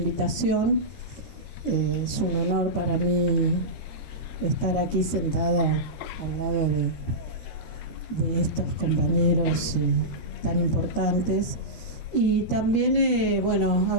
Es un honor para mí estar aquí sentada al lado de estos compañeros tan importantes. Y también,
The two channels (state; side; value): late; right; 13 ms